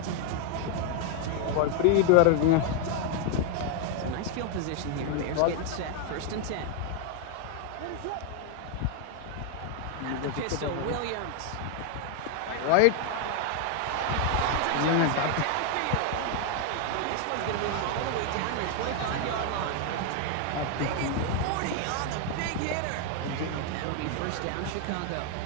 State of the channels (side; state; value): both; different; correlation 0.00